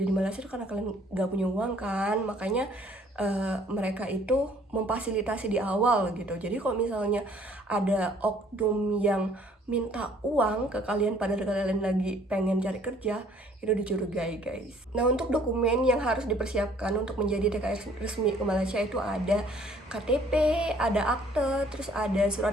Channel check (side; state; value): both; normal; correlation 0.58